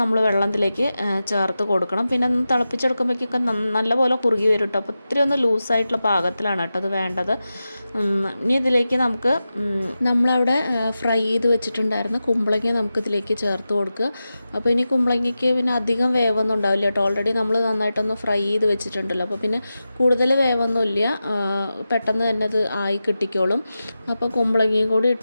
നമ്മൾ വെള്ളത്തിലേക്ക് ചേർത്ത് കൊടുക്കണം. പിന്നെ ഒന്ന് തിളപ്പിച്ചെടുക്കുമ്പോഴേക്കൊക്കെ നല്ലപോലെ കുറുകി വരും കേട്ടോ. അപ്പോൾ ഇത്തിരി ഒന്ന് ലൂസായിട്ടുള്ള പാകത്തിലാണ് കേട്ടോ അത് വേണ്ടത്. ഇനി ഇതിലേക്ക് നമുക്ക് നമ്മളവിടെ ഫ്രൈ ചെയ്ത് വെച്ചിട്ടുണ്ടായിരുന്ന കുമ്പളങ്ങ നമുക്കിതിലേക്ക് ചേർത്ത് കൊടുക്കുക. അപ്പോൾ ഇനി കുമ്പളങ്ങയ്ക്ക് പിന്നെ അധികം വേവൊന്നും ഉണ്ടാവില്ല കേട്ടോ. ഓൾറെഡി നമ്മൾ നന്നായിട്ടൊന്ന് ഫ്രൈ ചെയ്ത് വെച്ചിട്ടുണ്ടല്ലോ. അപ്പോൾ പിന്നെ കൂടുതൽ വേവൊന്നുമില്ല, പെട്ടെന്ന് തന്നെ അത് ആയി കിട്ടിക്കോളും. അപ്പോൾ കുമ്പളങ്ങയും കൂടി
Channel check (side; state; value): both; inverted; correlation -0.92